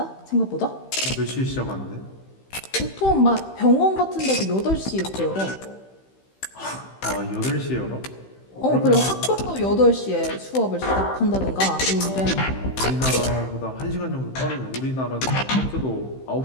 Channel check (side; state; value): right; late; 15 ms